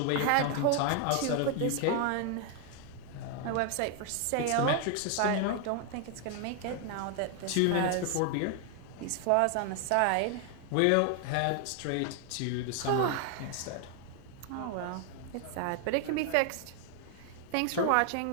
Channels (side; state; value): both; different; correlation 0.00